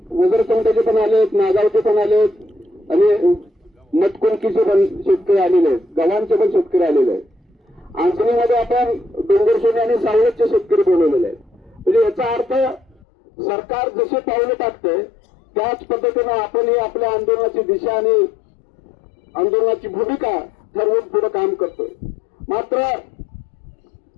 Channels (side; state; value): right; drops out; at 13.0 s